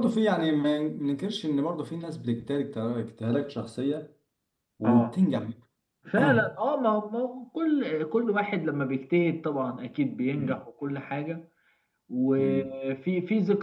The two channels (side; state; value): both; identical; correlation 1.00